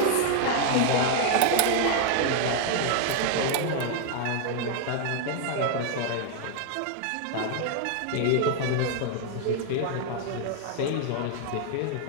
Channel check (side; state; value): both; different; correlation 0.00